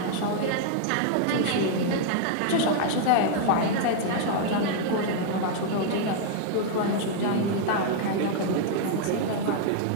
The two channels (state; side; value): different; both; correlation 0.00